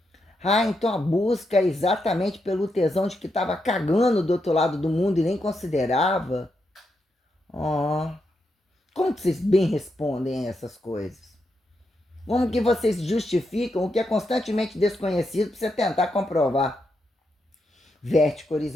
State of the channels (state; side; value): normal; both; correlation 0.83